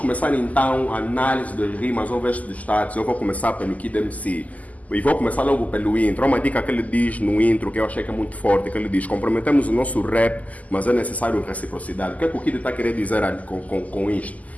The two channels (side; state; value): right; late; 0.075 ms